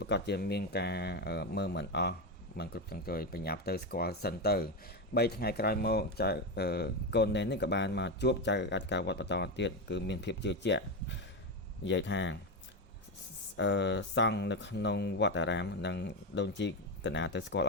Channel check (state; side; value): normal; both; correlation 0.12